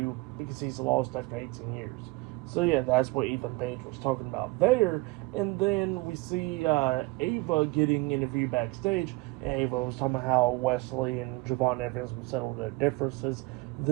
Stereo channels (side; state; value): left; quieter; 23.6 dB